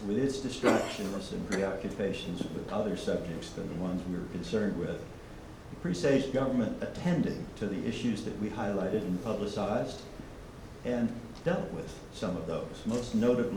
with its distractions and preoccupations with other subjects than the ones we were concerned with. It presaged government attending to the issues that we highlighted and publicized and dealt with some of those, most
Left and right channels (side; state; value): both; identical; correlation 1.00